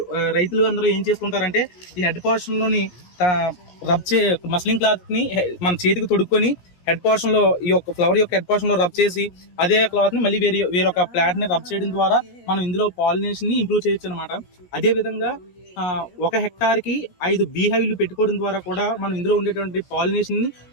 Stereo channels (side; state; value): right; late; 17 ms